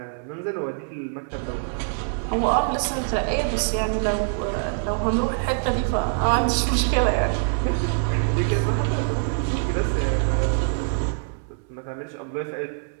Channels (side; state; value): left; silent; 62 dB below the other